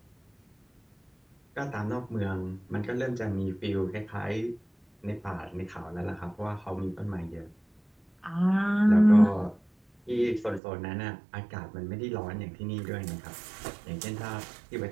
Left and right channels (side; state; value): left; drops out; at 10.6 s